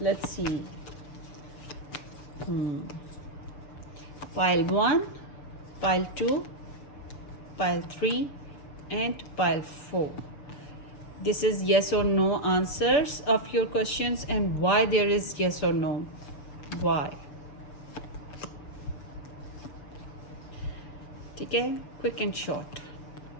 Let's see, pile 1, pile 2, pile 3 and pile 4. This is yes or no answers of your questions and why there is yes or no. Why? ठीक है, quick and short.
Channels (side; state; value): right; late; 6.9 ms